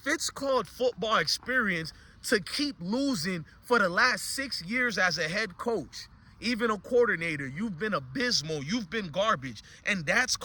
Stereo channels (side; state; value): both; identical; correlation 1.00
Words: it's called football experience to keep losing for the last 6 years as a head coach, even a coordinator, you've been abysmal, you've been garbage, and that's